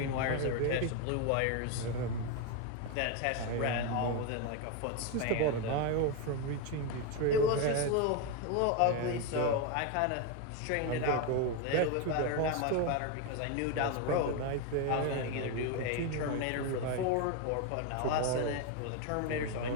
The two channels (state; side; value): different; both; correlation 0.02